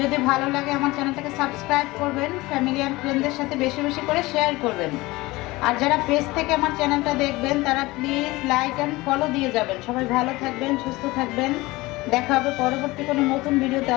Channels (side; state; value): right; quieter; 20.8 dB